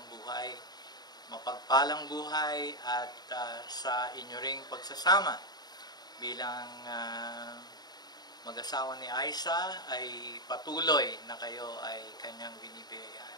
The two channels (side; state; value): right; late; 0.20 ms